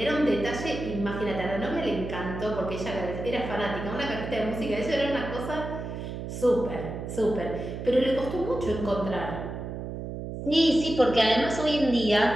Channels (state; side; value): noise; right; hum, 7 dB below the sound